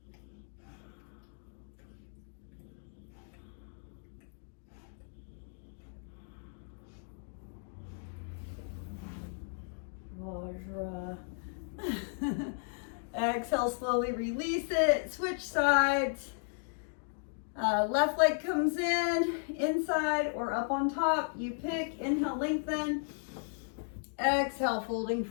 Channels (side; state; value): right; silent; digital silence